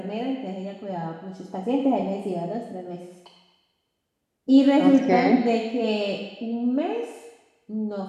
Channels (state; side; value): identical; both; correlation 1.00